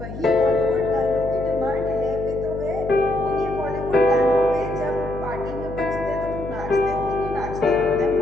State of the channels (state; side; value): noise; left; hum, 10 dB below the sound